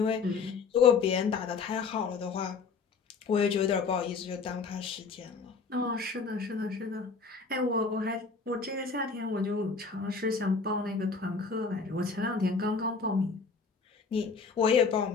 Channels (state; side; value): quieter; right; 4.9 dB